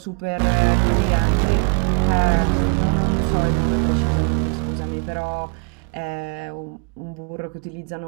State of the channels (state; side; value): quieter; left; 35.5 dB